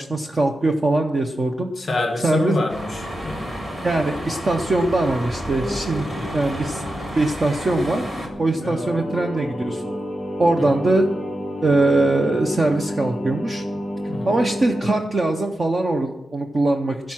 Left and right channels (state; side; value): normal; both; correlation 0.90